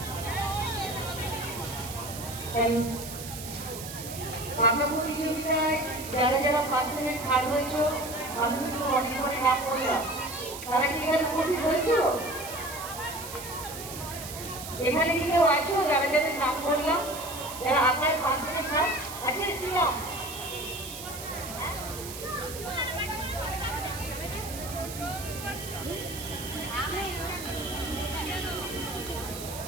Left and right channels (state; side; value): noise; right; hiss, 10 dB below the sound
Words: যারা যারা ফার্স্ট সেকেন্ড থার্ড হয়েছে আমি কিন্তু অনেক করে নাম করলাম, তারা কি এখানে উপস্থিত হয়েছিল? এখানে কি কেউ আছো যারা যাদের নাম করলাম, যারা আপনার ফার্স্ট সেকেন্ড থার্ড আছে? কি নাম?